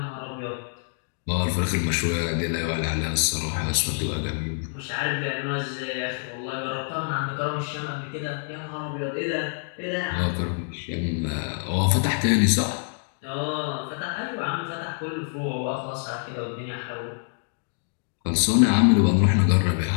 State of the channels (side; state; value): right; silent; 61 dB below the other